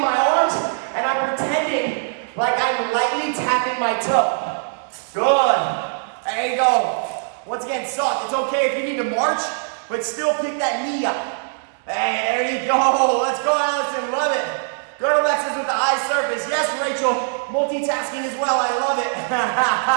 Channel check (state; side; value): silent; left; digital silence